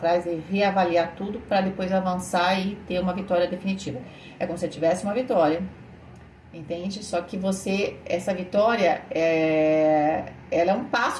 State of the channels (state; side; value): identical; both; correlation 1.00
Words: e reavaliar tudo para depois avançar e ter uma vitória definitiva. É como se você tivesse uma vitória, entende? Só que essa vitória, ela é um